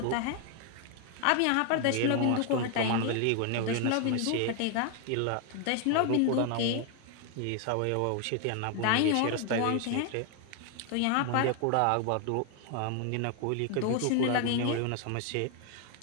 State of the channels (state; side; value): different; both; correlation 0.00